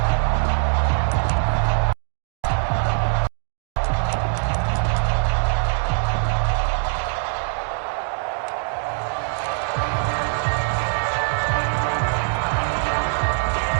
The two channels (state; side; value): silent; left; digital silence